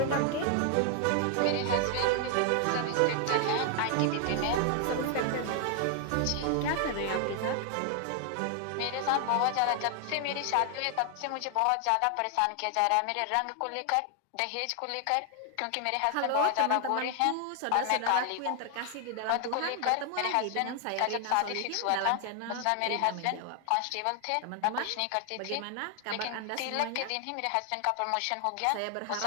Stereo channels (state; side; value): different; both; correlation 0.00